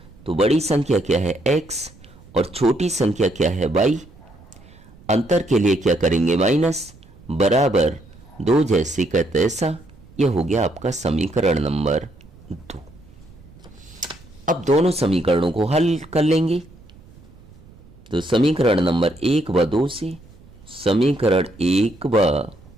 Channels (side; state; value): right; noise; rumble, 23 dB below the sound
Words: तो बड़ी संख्या क्या है, x, और छोटी संख्या क्या है, y। अंतर के लिए क्या करेंगे, माइनस, बराबर 2 जैसे का तैसा। यह हो गया आपका समीकरण नंबर 2। अब दोनों समीकरणों को हल कर लेंगे। तो समीकरण नंबर 1 व 2 से, समीकरण 1 व